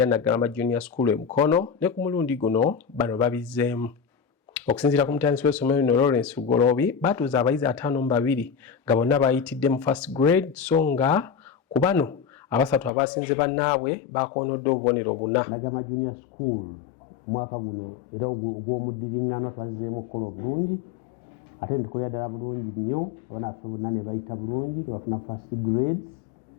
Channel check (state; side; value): drops out; right; at 12.9 s